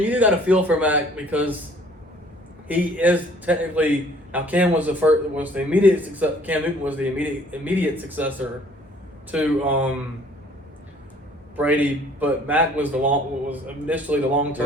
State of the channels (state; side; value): normal; both; correlation 0.56